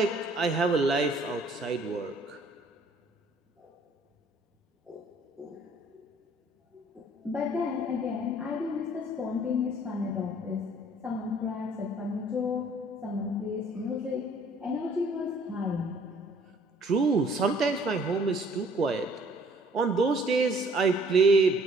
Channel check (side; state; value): both; normal; correlation 0.58